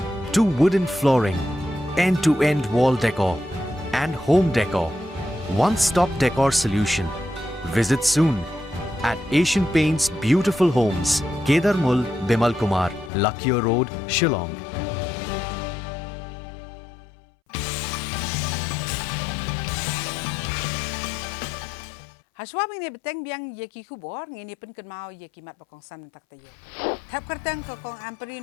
to wooden flooring, end-to-end wall decor and home decor. One-stop decor solution. Visit soon at Asian Paints Beautiful Homes, Kedarmul, Bimal Kumar, Lakhiya Road, Shillong. Haswabing ni beteng biang yeki kubor ngini pen kenmau yeki mat bakong san tak tayo. Thap kertang ke kong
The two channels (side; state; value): right; drops out; at 13.1 s